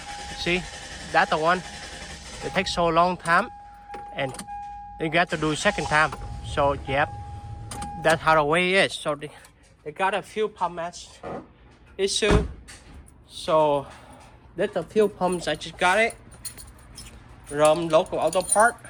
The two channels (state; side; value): identical; both; correlation 1.00